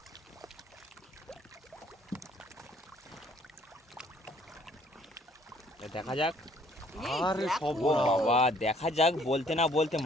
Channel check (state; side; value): normal; both; correlation 0.61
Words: দেখা যাক। এই আরে দেখো, সব ও বাবা, দেখা যাক বলতে না বলতে